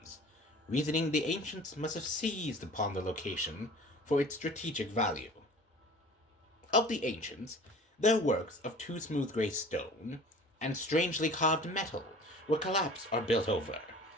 reasoning the ancients must have seized upon the location for its strategic value. Of the ancients, their works of too smooth gray stone and strangely carved metal were collapsed or built over,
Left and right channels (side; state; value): both; normal; correlation 0.43